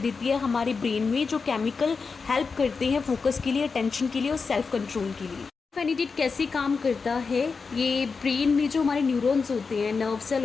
है हमारे ब्रेन में, जो केमिकल हेल्प करते हैं फोकस के लिए, अटेंशन के लिए और सेल्फ कंट्रोल के लिए। फेनिडेट कैसे काम करता है, ये ब्रेन में जो हमारे न्यूरॉन्स होते हैं, नर्व सेल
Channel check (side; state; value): right; quieter; 4.9 dB